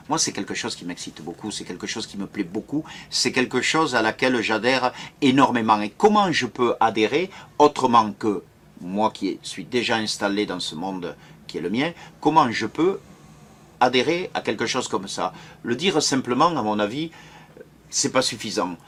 moi c'est quelque chose qui m'excite beaucoup, c'est quelque chose qui me plaît beaucoup, c'est quelque chose à laquelle j'adhère énormément. Et comment je peux adhérer autrement que moi qui suis déjà installé dans ce monde qui est le mien, comment je peux adhérer à quelque chose comme ça? Le dire simplement, à mon avis, c'est pas suffisant.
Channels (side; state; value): both; identical; correlation 1.00